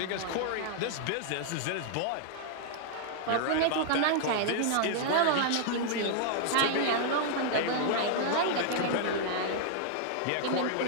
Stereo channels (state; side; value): different; both; correlation -0.01